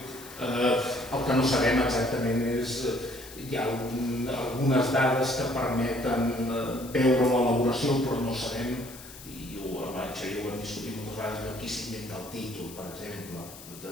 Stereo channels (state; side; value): noise; left; hiss, 16 dB below the sound